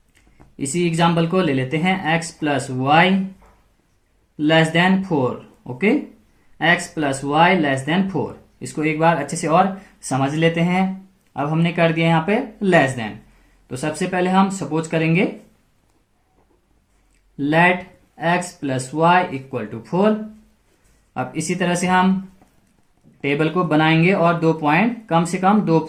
इसी एग्जांपल को ले लेते हैं, x plus y less than 4, okay, x plus y less than 4। इसको एक बार अच्छे से और समझ लेते हैं। अब हमने कर दिया यहाँ पे लेस देन, तो सबसे पहले हम सपोज करेंगे let x plus y equal to 4। अब इसी तरह से हम टेबल को बनाएंगे और 2 पॉइंट, कम से कम 2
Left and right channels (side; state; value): both; identical; correlation 1.00